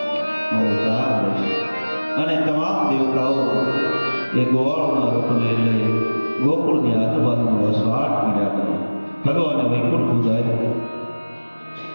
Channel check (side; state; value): both; inverted; correlation -1.00